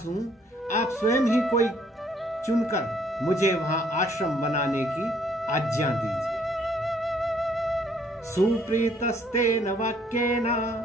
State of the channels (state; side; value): normal; both; correlation 0.64